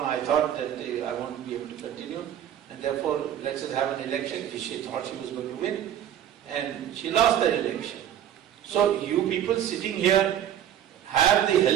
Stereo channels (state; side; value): quieter; left; 10.6 dB